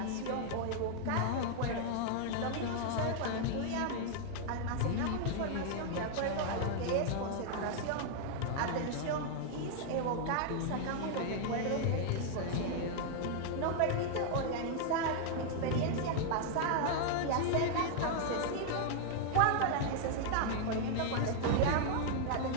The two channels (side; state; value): both; different; correlation -0.01